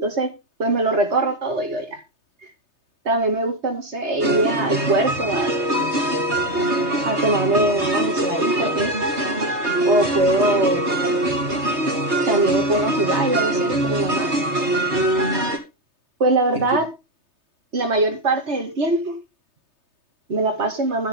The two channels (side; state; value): left; late; 3.3 ms